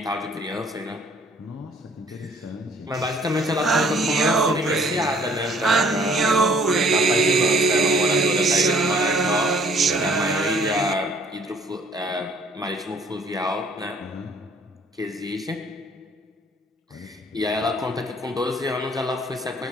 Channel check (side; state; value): both; normal; correlation 0.58